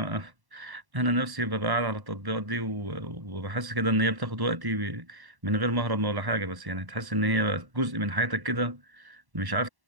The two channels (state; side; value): late; left; 1.1 ms